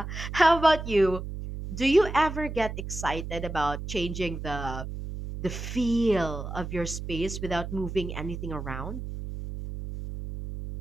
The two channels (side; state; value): right; noise; hum, 7 dB below the sound